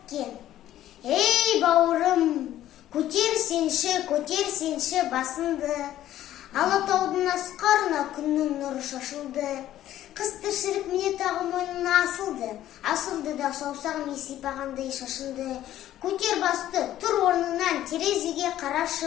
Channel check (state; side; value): quieter; right; 12.9 dB